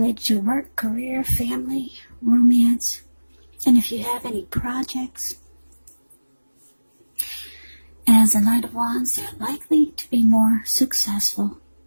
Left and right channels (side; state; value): both; inverted; correlation -1.00